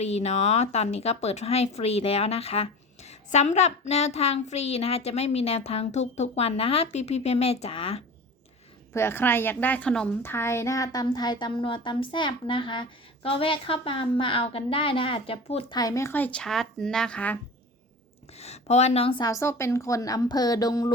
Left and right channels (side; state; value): both; normal; correlation 0.35